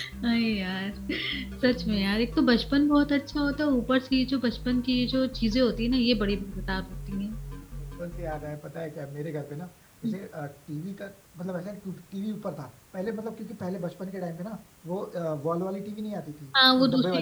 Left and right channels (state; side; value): identical; both; correlation 1.00